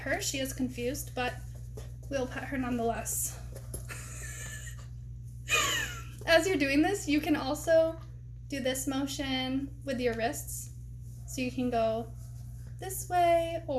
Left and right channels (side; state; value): both; identical; correlation 1.00